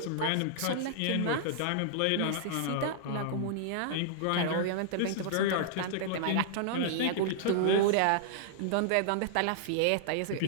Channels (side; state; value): both; different; correlation -0.01